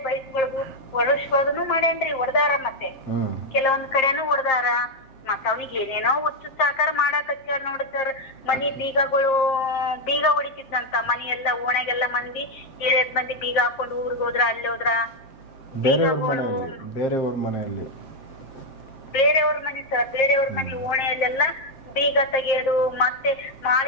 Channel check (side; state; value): right; late; 7.5 ms